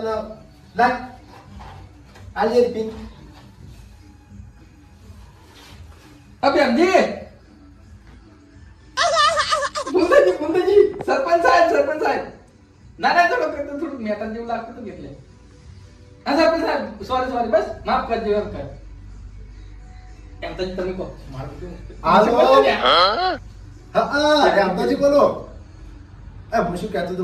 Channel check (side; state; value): both; identical; correlation 1.00